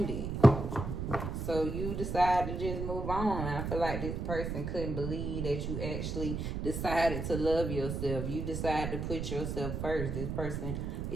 So you decide to just move on. I feel like this person couldn't believe that you actually decided to love yourself. You decided to put yourself first. This person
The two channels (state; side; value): noise; right; rumble, 3 dB below the sound